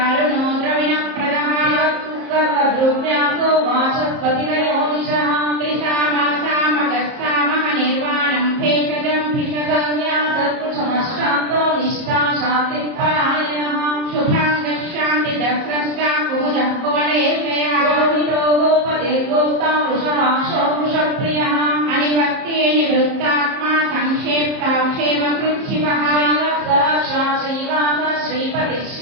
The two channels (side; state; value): left; late; 30 ms